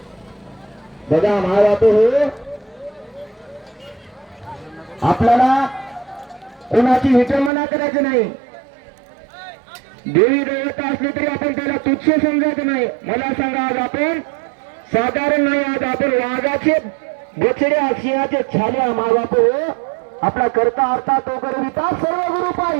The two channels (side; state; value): left; drops out; at 7.5 s